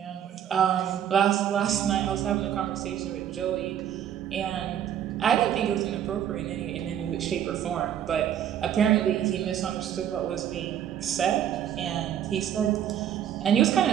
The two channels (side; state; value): left; quieter; 10.0 dB